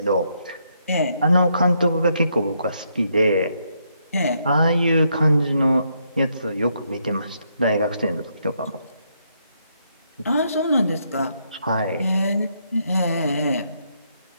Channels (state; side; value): inverted; both; correlation -0.76